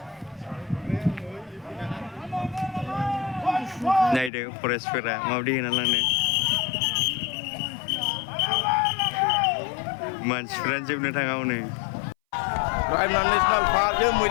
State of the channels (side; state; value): right; drops out; at 4.3 s